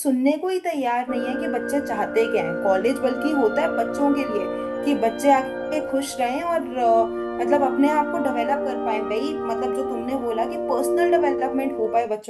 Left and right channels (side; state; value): both; identical; correlation 1.00